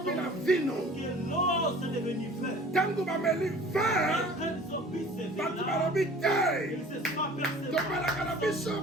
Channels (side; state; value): both; normal; correlation 0.47